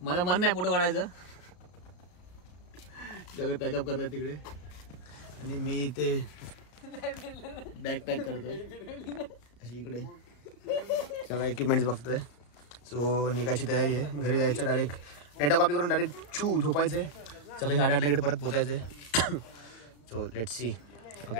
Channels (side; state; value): right; late; 34 ms